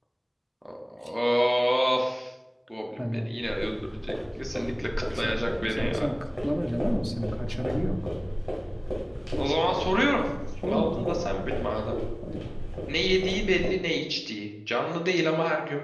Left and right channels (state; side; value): identical; both; correlation 1.00